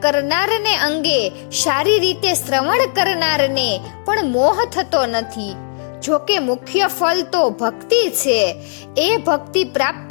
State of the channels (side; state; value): right; silent; digital silence